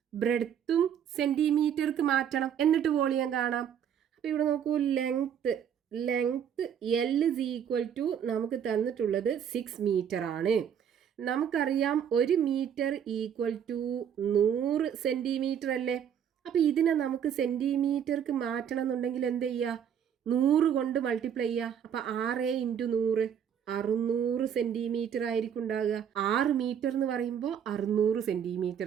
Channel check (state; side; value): quieter; left; 8.6 dB